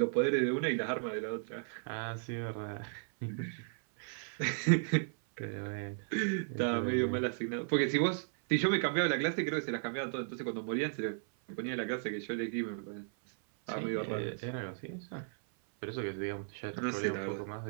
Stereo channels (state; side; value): silent; left; 54 dB below the other